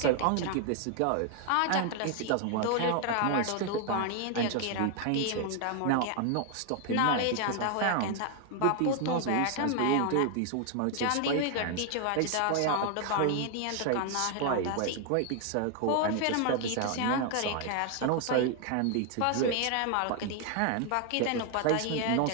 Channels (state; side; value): different; both; correlation 0.00